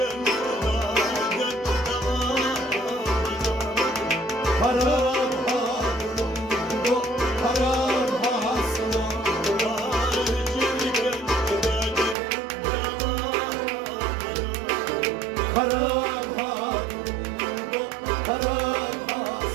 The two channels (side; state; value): left; drops out; at 12.2 s